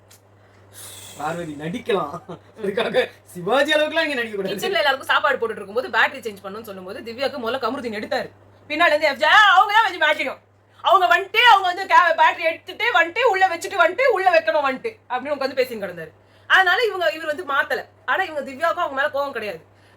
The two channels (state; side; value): identical; both; correlation 1.00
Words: பார்வதி நடிக்கலாம், அதுக்காக சிவாஜி அளவுக்குலாம் இங்க நடிக்க கூடாது. கிச்சன்ல எல்லாருக்கும் சாப்பாடு போட்டுட்டு இருக்கும்போது பேட்டரி சேஞ்ச் பண்ணணும்னு சொல்லும்போது திவ்யாக்கு முதல்ல கமருதீன் எடுத்தாரு. பின்னால இருந்து FJ அவங்க தான் வச்சு மேட்சிக்கும். அவங்க வந்துட்டு அவங்க வந்து பேட்டரி எடுத்துட்டு வந்துட்டு உள்ள வச்சுட்டு வந்துட்டு உள்ள வைக்கணும் வந்துட்டு அப்படின்னு உட்காந்து பேசின்னு கிடந்தாரு. அதனால இவர் வந்து மாத்தல. ஆனா இவங்க திவ்யாவுக்கும் அவங்க மேல கோவம் கிடையாது.